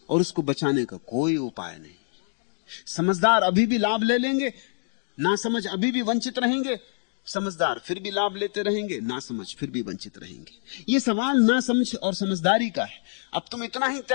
और उसको बचाने का कोई उपाय नहीं। समझदार अभी भी लाभ ले लेंगे, ना समझ अभी भी वंचित रहेंगे, समझदार फिर भी लाभ लेते रहेंगे, ना समझ फिर भी वंचित रहेंगे। ये सवाल ना समझ और समझदारी का है। अब तुम इतना ही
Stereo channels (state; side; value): silent; right; digital silence